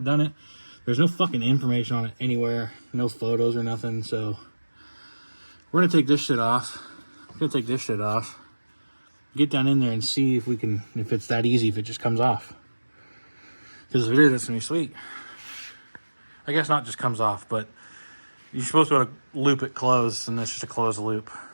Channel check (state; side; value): inverted; both; correlation -1.00